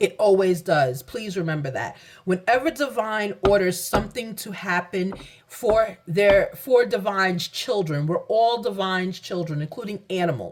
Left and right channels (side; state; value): both; identical; correlation 1.00